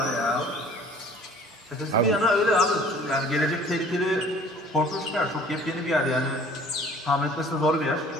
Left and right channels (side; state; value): both; normal; correlation 0.51